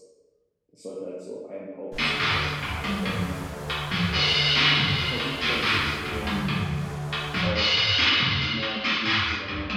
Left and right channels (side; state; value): both; identical; correlation 1.00